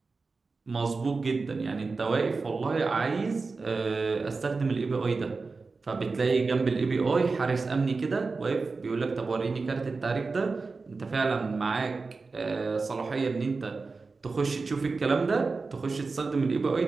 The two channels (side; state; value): left; quieter; 4.1 dB